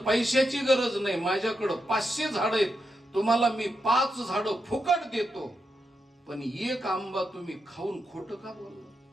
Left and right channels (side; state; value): both; normal; correlation 0.85